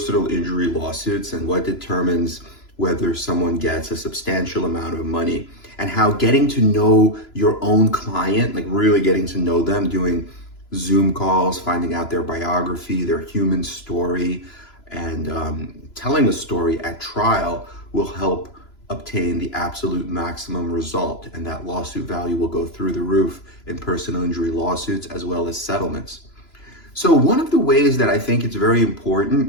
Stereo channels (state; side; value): late; right; 3.0 ms